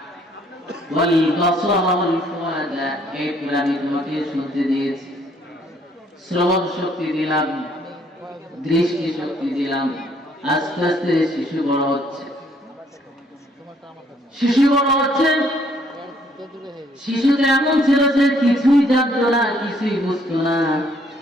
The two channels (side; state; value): both; normal; correlation 0.65